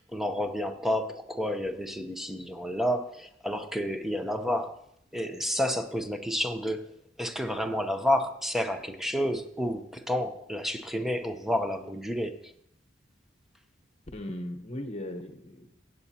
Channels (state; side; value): normal; both; correlation 0.80